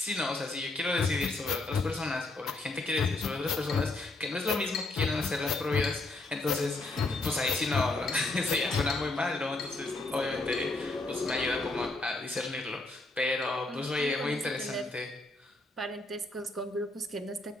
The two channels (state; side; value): quieter; right; 3.0 dB